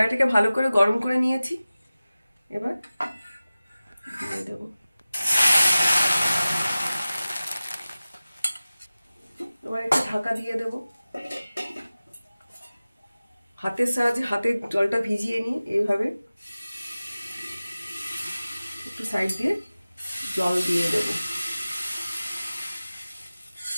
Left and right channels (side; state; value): both; inverted; correlation -0.97